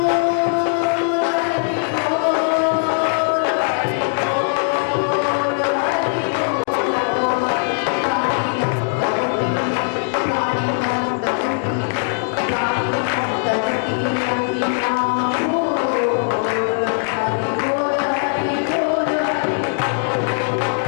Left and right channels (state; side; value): silent; right; 66 dB below the other